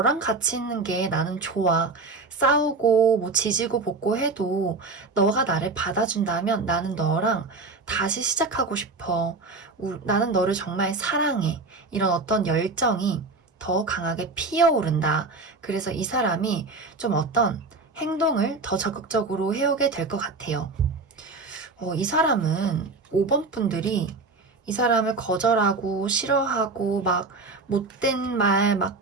같이 있는 게 나는 좋아. 싸우고 뭐 지지고 볶고 해도 너가 나를 받아준다면 나는 너랑 다시 시작하고 싶어. 나는 너를 정말 사랑해. 이런 어떤 열정이 더 강하게 피어오른다. 그래서 이 사람이 좀 어떤 행동을 더 적극적으로 해오게 될 것 같아요. 이 사람은 5번 분들이 이 사람을 거절하고 싫어하고 막 못된 말, 막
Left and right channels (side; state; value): left; quieter; 3.8 dB